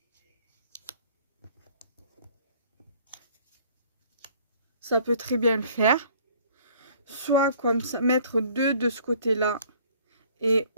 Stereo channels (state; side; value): inverted; both; correlation -0.56